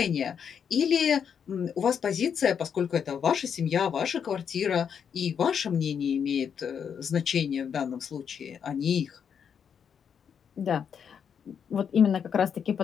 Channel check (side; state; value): right; quieter; 7.5 dB